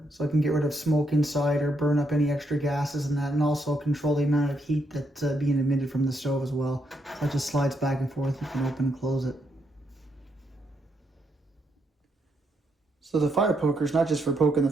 so I can get rid of smoke inside or burn up any extra gases and that, and also control the amount of heat that's being emitted from the stove as well. So it just slides back and forth, you can open and close it. So the fire poker is not just for poking the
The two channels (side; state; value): both; normal; correlation 0.78